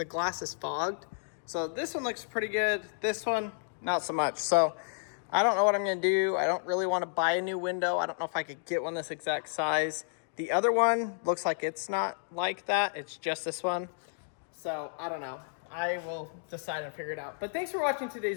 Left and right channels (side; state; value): right; silent; digital silence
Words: glass is fogged. So this one looks pretty good. This one, not so much. So I don't know what I'm going to do. I don't really want to buy a new window. I don't know if I could get one this exact size. The other one looks like it's not like that. It's just this one. So I don't know. I will decide and figure it out. But thanks for watching